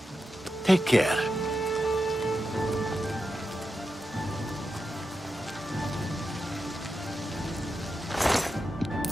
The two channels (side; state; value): both; normal; correlation 0.88